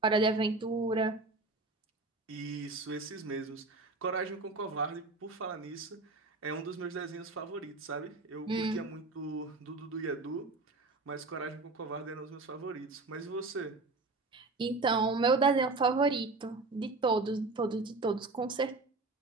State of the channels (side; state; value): left; quieter; 3.4 dB